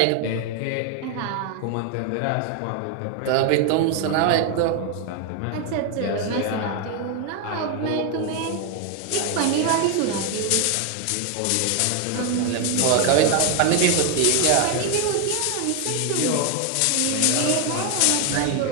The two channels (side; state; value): both; different; correlation 0.01